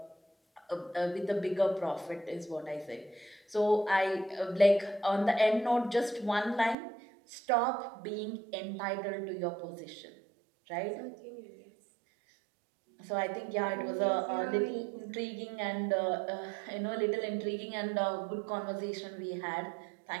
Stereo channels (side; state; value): left; drops out; at 6.8 s